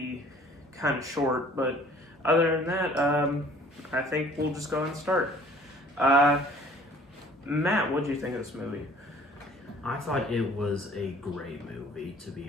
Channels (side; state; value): both; normal; correlation 0.53